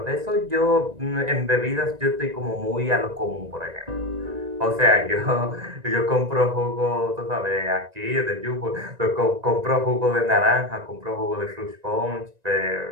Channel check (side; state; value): left; late; 1.9 ms